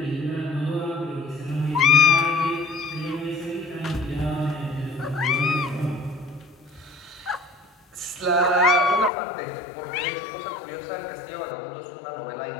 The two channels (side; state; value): right; drops out; at 9.1 s